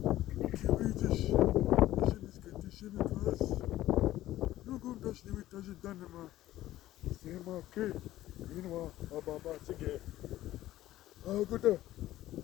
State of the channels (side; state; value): right; quieter; 14.6 dB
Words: Kiewicz, Ziemniacka, Cieszymy Was. Drugą też nie wykaże dane ma. Sema ke, inwa, ababa sige. Guta,